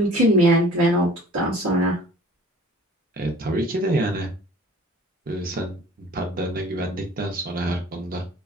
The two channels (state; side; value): normal; both; correlation 0.48